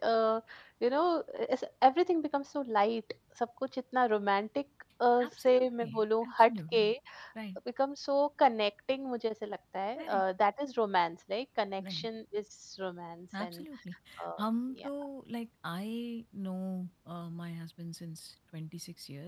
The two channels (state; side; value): identical; both; correlation 1.00